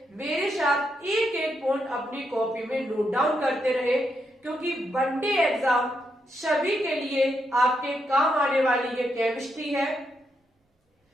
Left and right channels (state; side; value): normal; both; correlation 0.81